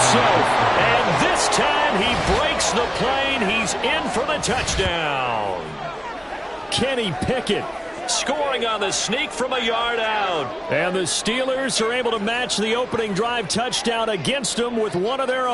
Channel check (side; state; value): both; identical; correlation 1.00